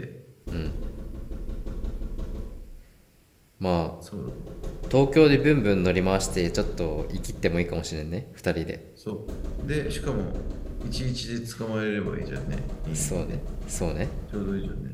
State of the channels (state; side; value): identical; both; correlation 1.00